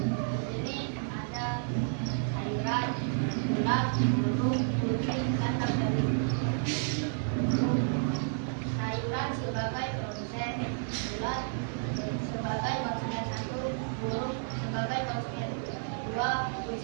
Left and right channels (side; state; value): left; silent; digital silence